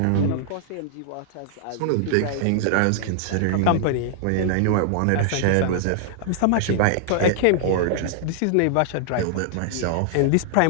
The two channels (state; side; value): different; both; correlation -0.01